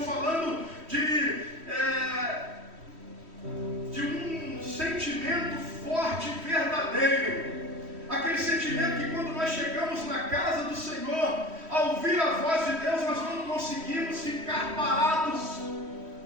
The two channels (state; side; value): late; left; 3.1 ms